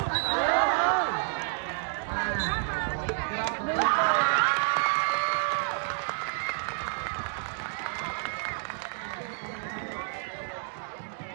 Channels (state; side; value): silent; left; 58 dB below the other